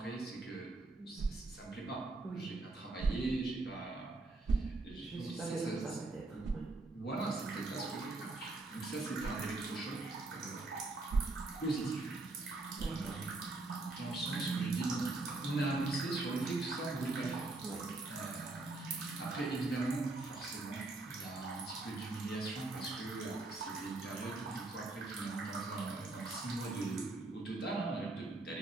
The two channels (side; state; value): left; quieter; 3.1 dB